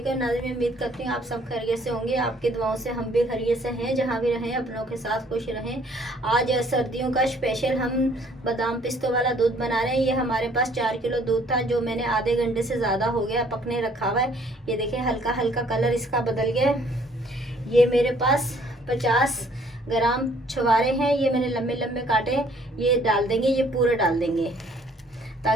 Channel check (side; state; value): both; normal; correlation 0.60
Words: नाज़रीन, मैं उम्मीद करती हूँ आप सब खैरियत से होंगे। आपकी दुआओं से हम भी खैरियत से हैं। जहाँ भी रहें अपनों के साथ खुश रहें। आज सर्दियों का स्पेशल हम बादाम पिस्तों वाला दूध बना रहे हैं। ये हमारे पास 4 किलो दूध था जो मैंने आधे घंटे से ज़्यादा हो गया पकने रखा हुआ है। ये देखें हल्का हल्का कलर इसका बदल गया। ये मेरे पास 50 ग्राम छुहारे हैं, ये मैंने लंबे लंबे काटे हैं। ये डाल देंगे, ये पूरे डाल देंगे